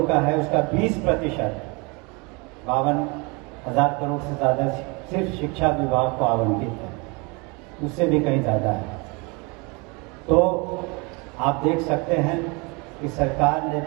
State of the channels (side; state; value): left; quieter; 29.1 dB